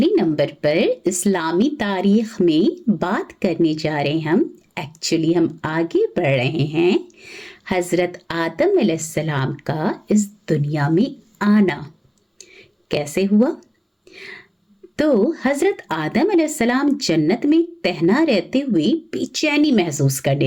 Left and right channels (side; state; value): both; identical; correlation 1.00